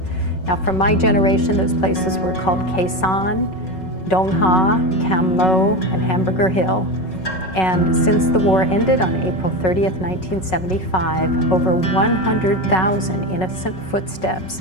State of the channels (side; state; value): right; late; 5.4 ms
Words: Now, from my generation, those places were called Khe Sanh, Dong Ha, Cam Lo, and Hamburger Hill. And since the war ended on April 30th, 1975, over 100,000 innocent footsteps